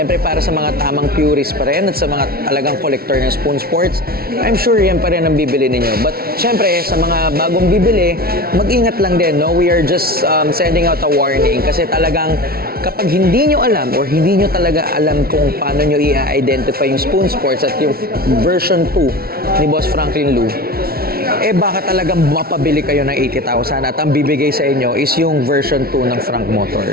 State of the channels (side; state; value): left; late; 0.44 ms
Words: para sa mga tamang purist pa rin at sa mga talagang collector ng Spoon Sports, I'm sure yan pa rin ang bibili ninyo. But, siyempre, sa mga bagong bibili, mag-ingat lang din, no? We are just sending out a warning kasi talagang kapag hindi nyo alam or hindi nyo talaga alam kung paano nyo i-identify yung Spoon Sports at yung version 2 ni Boss Franklin Lou, baka talagang mapabili kayo ng 80,000 at ang bibigay sa inyo is yung version 2 ng Frank